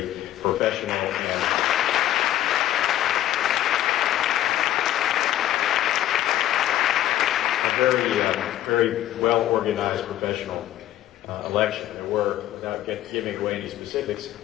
professional and very well-organized professional election. There were, without giving away any specifics,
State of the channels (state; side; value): quieter; right; 13.0 dB